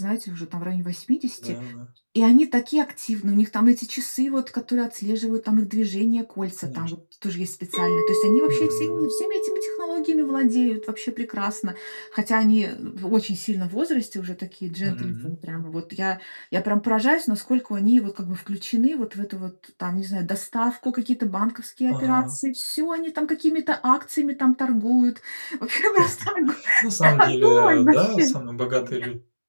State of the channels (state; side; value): inverted; both; correlation -1.00